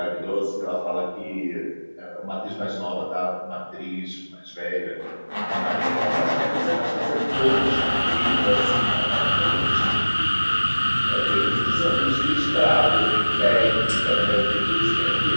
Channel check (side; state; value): both; inverted; correlation -1.00